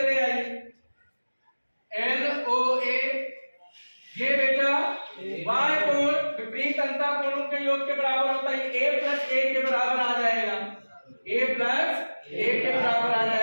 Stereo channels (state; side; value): inverted; both; correlation -1.00